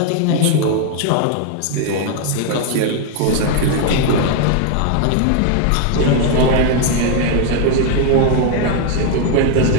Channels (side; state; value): both; different; correlation 0.00